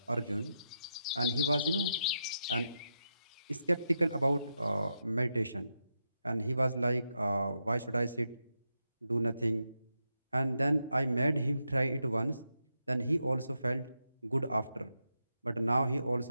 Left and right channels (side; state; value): both; inverted; correlation -0.85